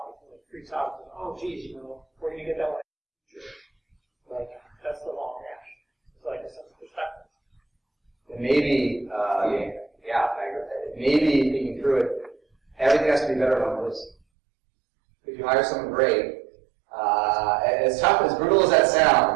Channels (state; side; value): drops out; left; at 14.2 s